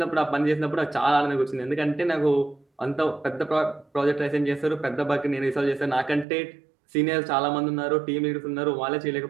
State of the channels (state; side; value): drops out; left; at 6.2 s